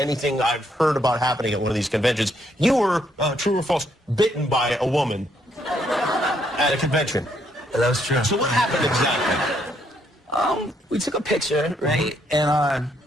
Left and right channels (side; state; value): both; normal; correlation 0.72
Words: I've heard about happening at one of these conventions. You were, true or false, bitten by a woman at a convention. That was true. So what happened exactly? We took a picture, right? And